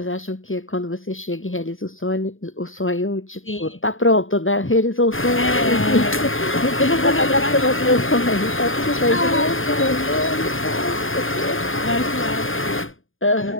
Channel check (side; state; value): right; late; 0.59 ms